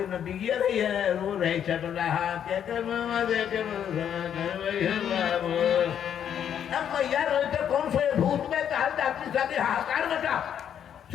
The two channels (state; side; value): quieter; right; 9.1 dB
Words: में बिगिया रही है, रो रही चट रहा मैया रोए तो कौन से भूत में ताल डाक्टरी साथी हाहाकार मचा।